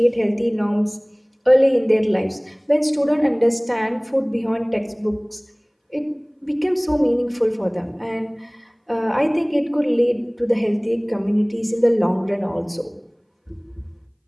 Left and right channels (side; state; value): both; identical; correlation 1.00